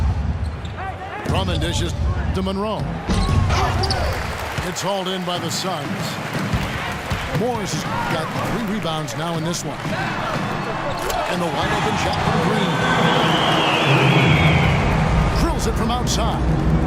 Drummond dishes to Monroe. It's hauled in by the Suns. Morris has got 3 rebounds now in this one. And the wide open shot from Green. Drills it from outside.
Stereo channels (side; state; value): both; identical; correlation 1.00